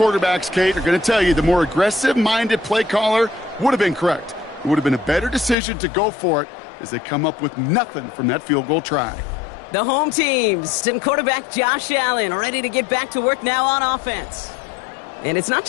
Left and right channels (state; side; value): drops out; right; at 5.6 s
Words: Kate, are going to tell you the more aggressive-minded play caller would have been correct. It would have been a better decision to go for it as they come up with nothing from that field goal try. The home teams and quarterback Josh Allen ready to get back to work now on offense. And it's not